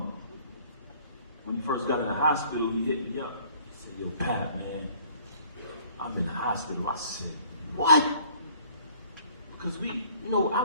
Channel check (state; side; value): inverted; both; correlation -0.56